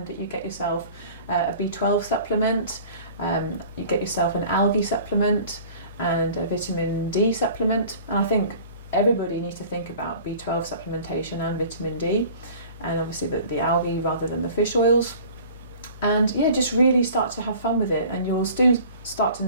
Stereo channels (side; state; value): both; inverted; correlation -0.46